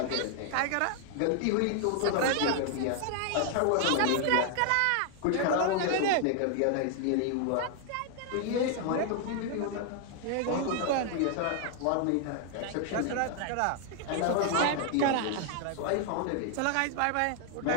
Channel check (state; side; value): different; both; correlation 0.00